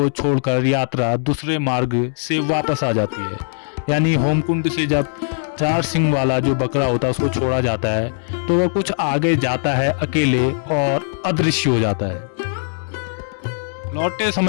छोड़कर यात्रा दूसरे मार्ग से वापस आ जाती है। यानी होमकुंड से जब 4 सिंग वाला जो बकरा होता है उसको छोड़ा जाता है तो वह कुछ आगे जाता है अकेले और अदृश्य हो जाता है। लौटते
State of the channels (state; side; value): silent; right; 66 dB below the other